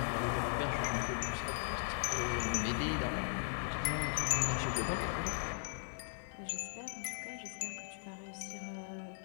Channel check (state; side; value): silent; right; 52 dB below the other